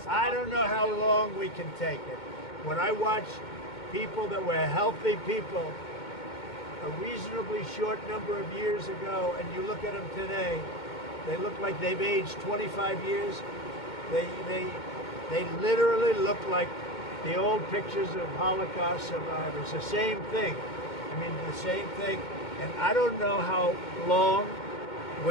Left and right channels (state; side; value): late; right; 2.2 ms